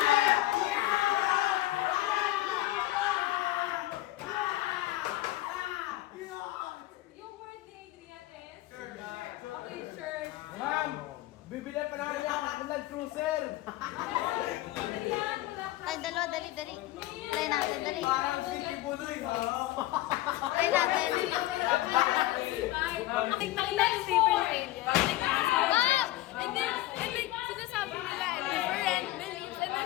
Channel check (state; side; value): quieter; right; 16.6 dB